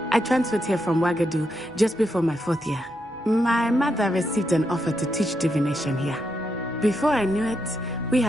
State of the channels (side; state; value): both; normal; correlation 0.82